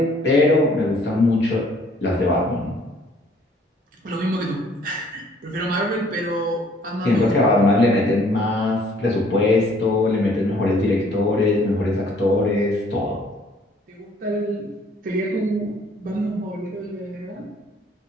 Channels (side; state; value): both; normal; correlation 0.60